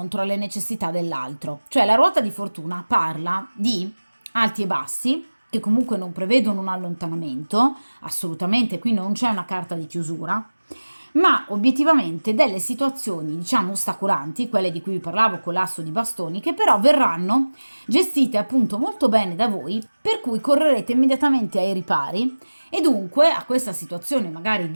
alle necessità dell'altro. Cioè la ruota di fortuna parla di alti e bassi, che comunque non prevedono un allontanamento, assolutamente, qui non c'è una carta di chiusura, ma obiettivamente delle situazioni, diciamo, ostacolanti, quelle di cui vi parlavo con l'asso di bastoni, che però verranno gestite appunto molto bene da voi, per cui correrete immediatamente ai ripari e dunque a questa situazione magari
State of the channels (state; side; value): inverted; both; correlation -1.00